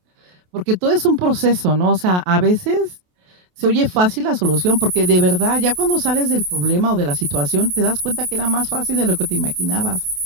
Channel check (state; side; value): late; left; 28 ms